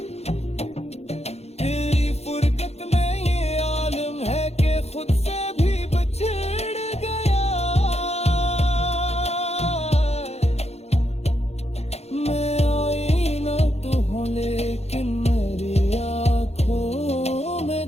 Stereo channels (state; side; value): late; right; 0.31 ms